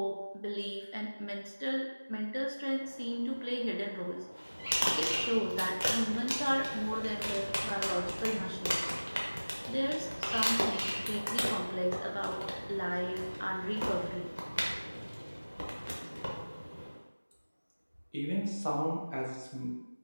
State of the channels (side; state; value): both; inverted; correlation -1.00